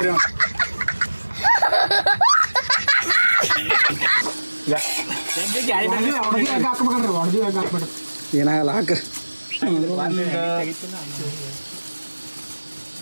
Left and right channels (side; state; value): both; inverted; correlation -1.00